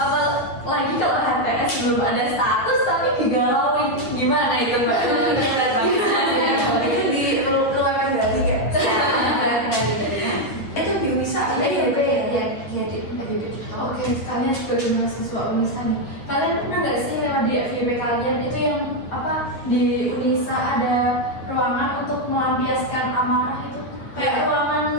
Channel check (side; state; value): right; late; 9.3 ms